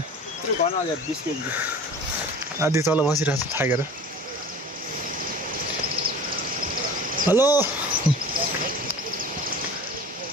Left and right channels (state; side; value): normal; both; correlation 0.40